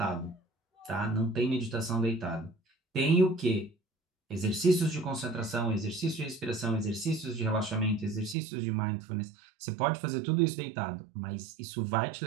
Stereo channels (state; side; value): drops out; left; at 8.3 s